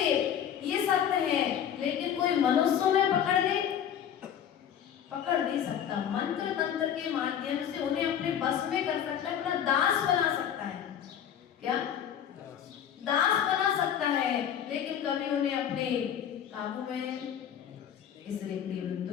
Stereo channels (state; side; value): quieter; right; 9.3 dB